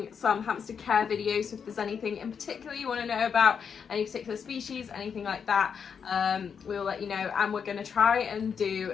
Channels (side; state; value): right; quieter; 6.8 dB